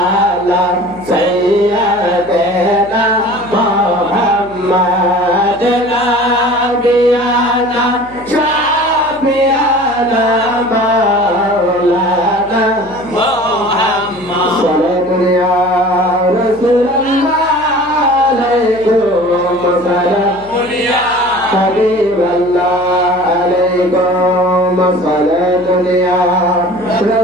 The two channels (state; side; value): noise; left; hum, 22 dB below the sound